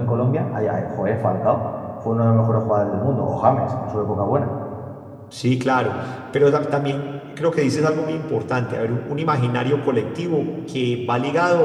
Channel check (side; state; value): both; identical; correlation 1.00